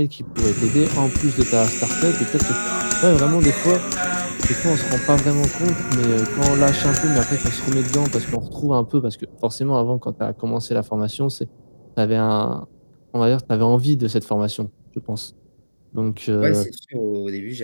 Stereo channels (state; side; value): inverted; both; correlation -1.00